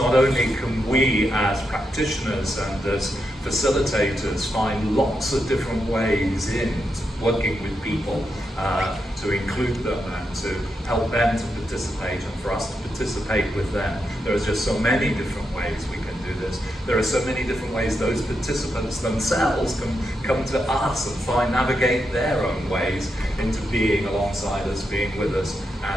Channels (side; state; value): both; normal; correlation 0.84